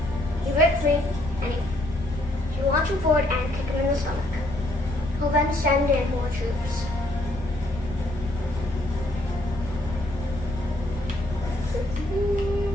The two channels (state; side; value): noise; left; rumble, 10 dB below the sound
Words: You break free, and you launch him forward and kick him in the stomach. He'll then send in more troops.